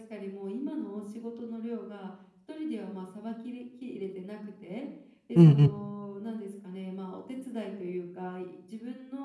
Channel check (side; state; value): both; identical; correlation 1.00